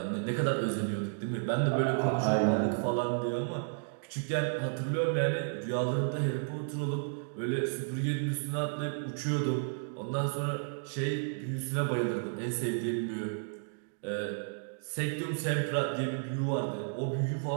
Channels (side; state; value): left; silent; digital silence